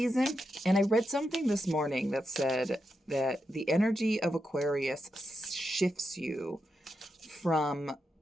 and I read something this morning that said that the energy of Aquarius shifts you from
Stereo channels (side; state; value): both; normal; correlation 0.86